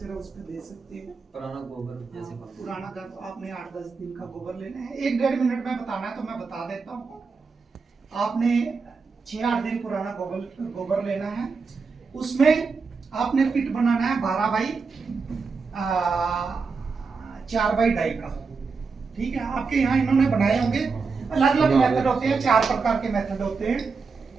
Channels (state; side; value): quieter; left; 4.8 dB